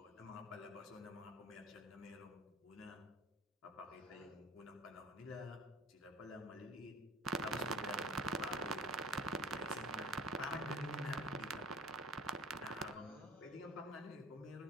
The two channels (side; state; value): both; normal; correlation 0.44